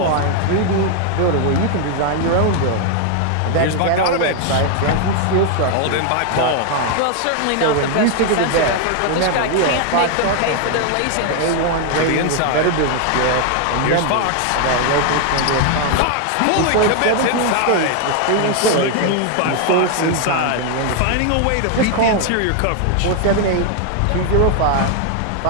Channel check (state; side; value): different; both; correlation 0.00